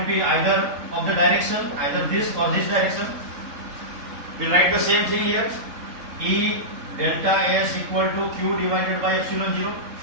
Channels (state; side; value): late; left; 3.8 ms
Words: B, either of the direction, either this or this direction. We'll write the same thing here. E delta S equal to Q divided by epsilon 0.